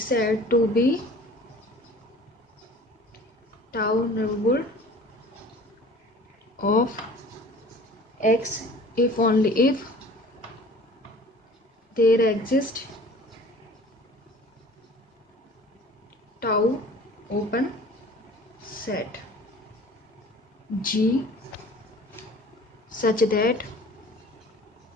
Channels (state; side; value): normal; both; correlation 0.46